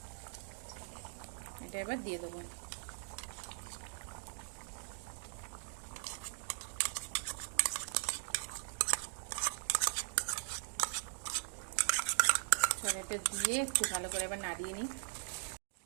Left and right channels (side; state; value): left; silent; digital silence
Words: এটা এবার দিয়ে দেবো। এটা দিয়ে একটু ভালো করে এবার নাড়িয়ে নিই।